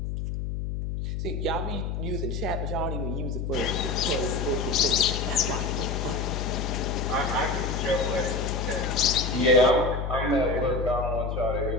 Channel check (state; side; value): noise; left; hum, 3 dB below the sound